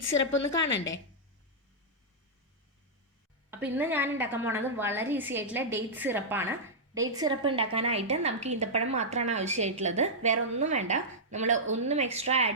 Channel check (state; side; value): normal; both; correlation -0.10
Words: സിറപ്പ് ഒന്ന് കാണണ്ടേ? അപ്പോൾ ഇന്ന് ഞാൻ ഉണ്ടാക്കാൻ പോണത് വളരെ ഈസി ആയിട്ടുള്ള ഡേറ്റ് സിറപ്പാണ്. ഡേറ്റ് സിറപ്പ് ഉണ്ടാക്കാനായിട്ട് നമുക്ക് ഈന്തപ്പഴം മാത്രമാണ് ആവശ്യമായിട്ടുള്ളത്, വേറെ ഒന്നും വേണ്ട. നമ്മൾ ഒന്നും എക്സ്ട്രാ